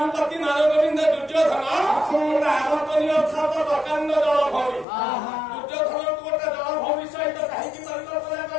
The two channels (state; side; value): drops out; right; at 4.9 s